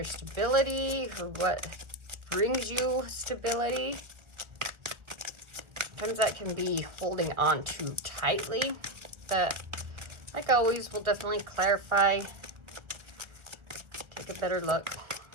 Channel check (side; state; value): left; late; 1.3 ms